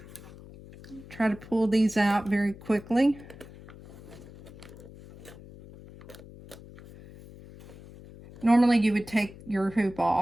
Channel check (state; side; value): noise; left; hum, 18 dB below the sound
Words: try to pull these out very quickly. Normally you would take your hoop